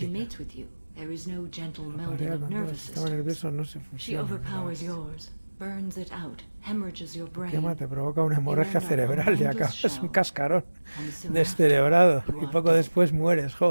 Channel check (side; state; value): both; inverted; correlation -1.00